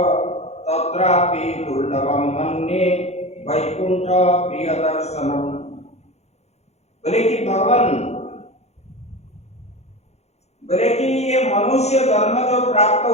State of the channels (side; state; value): right; late; 0.31 ms